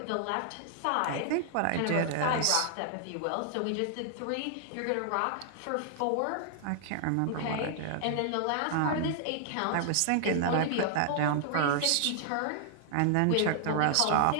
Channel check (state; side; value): different; both; correlation 0.00